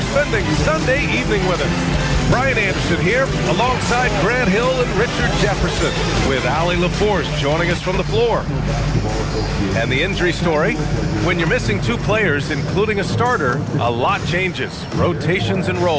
Sunday evening with us. Brian Anderson here, alongside Grant Hill and Richard Jefferson, with Allie LaForce joining us from the floor. And the injury story, when you're missing two players, including a starter, a lot changes. Rotations and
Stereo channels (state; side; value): identical; both; correlation 1.00